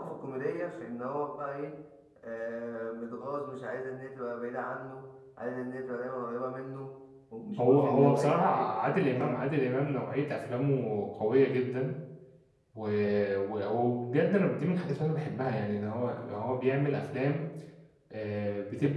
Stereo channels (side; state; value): both; identical; correlation 1.00